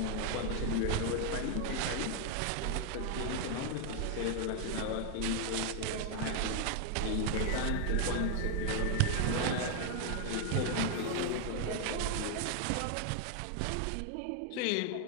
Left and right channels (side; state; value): both; different; correlation 0.01